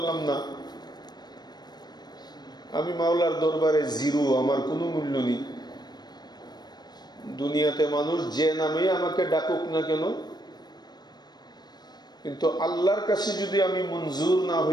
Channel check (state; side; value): late; right; 0.20 ms